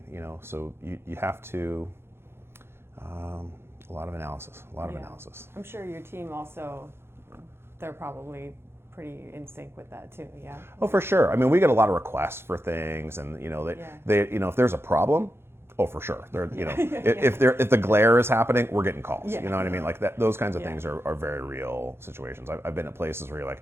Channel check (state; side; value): late; left; 0.12 ms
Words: So you have to a lot of analysis. I'm sure your team also, they're probably pretty in sync with that too. Yeah. Oh, for sure. I mean, we get a lot of requests for things, and they if there's a problem, oh, for sure. They're, if the glare is happening, we're getting calls. You know what I mean? Like that. Those kinds of things are very real situations. I've been at places where you're